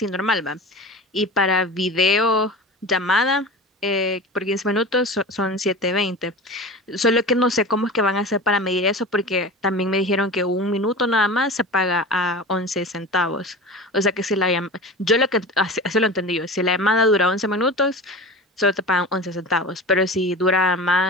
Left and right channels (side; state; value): both; normal; correlation 0.32